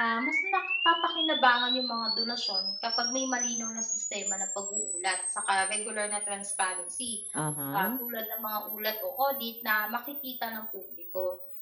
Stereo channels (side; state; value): both; identical; correlation 1.00